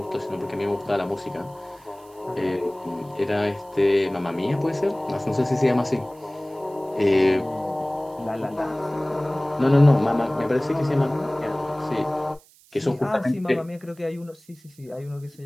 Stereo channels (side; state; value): right; noise; hiss, 28 dB below the sound